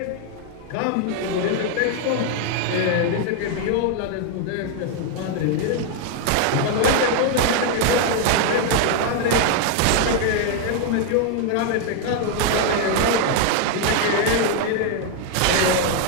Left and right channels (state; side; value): different; both; correlation 0.01